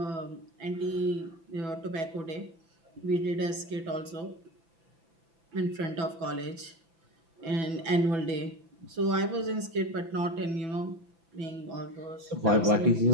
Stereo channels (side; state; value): left; late; 6.1 ms